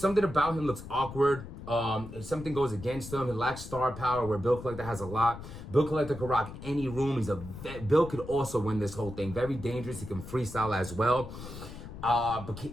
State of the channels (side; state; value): left; noise; rumble, 12 dB below the sound